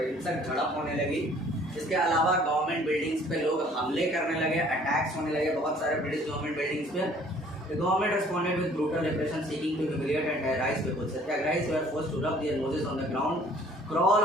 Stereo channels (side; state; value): both; normal; correlation 0.56